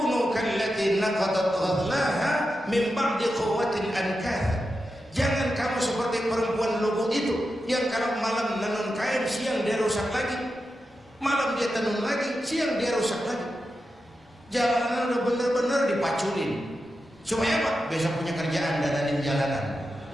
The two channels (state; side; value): normal; both; correlation 0.89